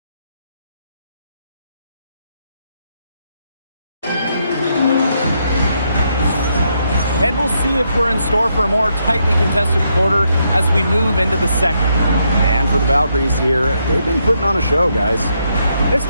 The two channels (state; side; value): inverted; both; correlation -0.78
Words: And we'll see if we're in store for a more tightly contested quarter as we move into the second. And for the Valkyries here, they've been putting on a show, guys. This